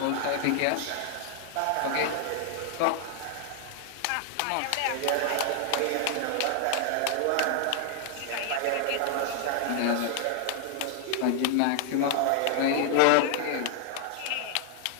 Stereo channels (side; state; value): both; different; correlation 0.00